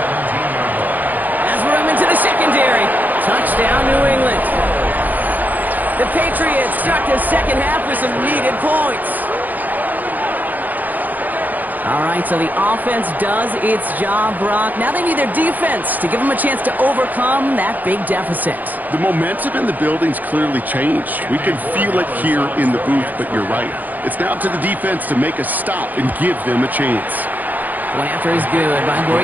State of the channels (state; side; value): late; left; 0.083 ms